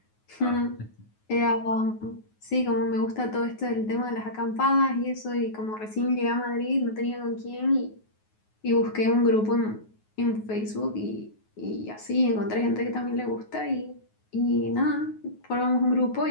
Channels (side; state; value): right; late; 9.4 ms